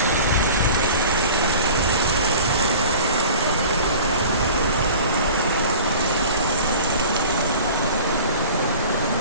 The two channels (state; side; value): inverted; both; correlation -0.41